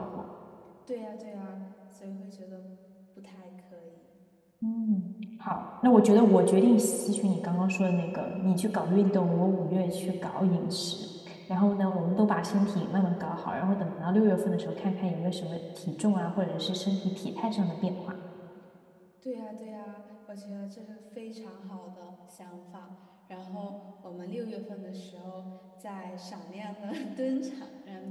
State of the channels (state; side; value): identical; both; correlation 1.00